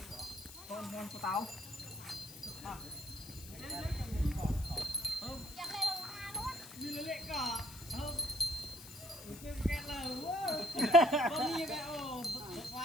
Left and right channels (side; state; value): left; noise; hiss, 15 dB below the sound